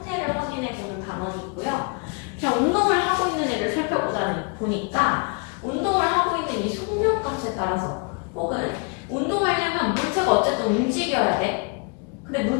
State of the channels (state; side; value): quieter; right; 33.9 dB